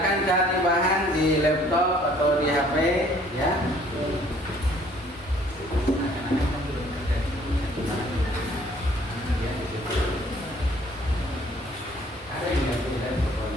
cari bahan di laptop atau di HP, ya.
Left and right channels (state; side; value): normal; both; correlation 0.58